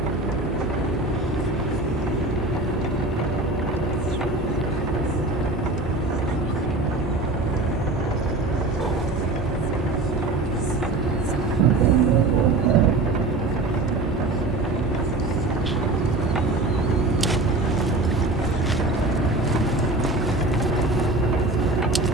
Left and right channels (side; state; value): left; quieter; 3.0 dB